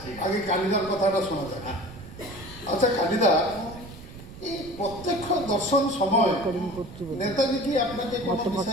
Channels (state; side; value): noise; right; rumble, 16 dB below the sound